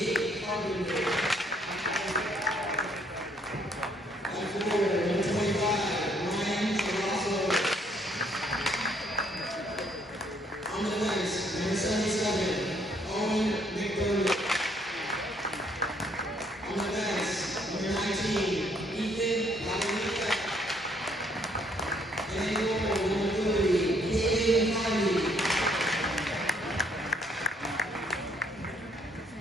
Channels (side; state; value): both; normal; correlation 0.67